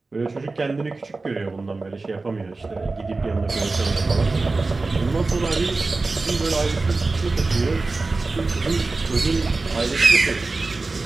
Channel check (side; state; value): left; quieter; 3.6 dB